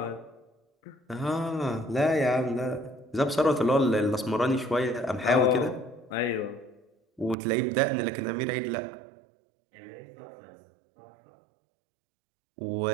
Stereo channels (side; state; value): left; drops out; at 7.4 s